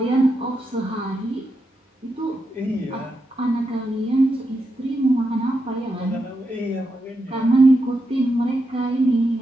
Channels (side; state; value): both; normal; correlation 0.85